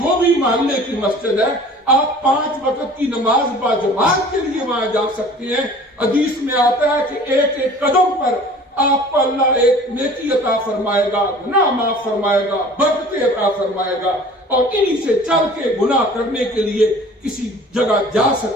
بھی محلے کی مسجد ہے، آپ 5 وقت کی نماز با جماعت کے لیے وہاں جا سکتے ہیں. حدیث میں آتا ہے کہ ایک ایک قدم پر آپ کو اللہ ایک نیکی عطا فرمائے گا, گناہ معاف فرمائے گا, برکتیں عطا فرمائے گا, اور انہی سے چل کے گناہ کرنے کے لیے کسی جگہ جا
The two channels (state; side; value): normal; both; correlation 0.46